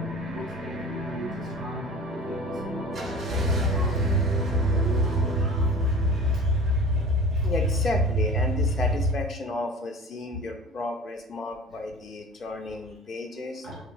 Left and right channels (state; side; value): normal; both; correlation 0.39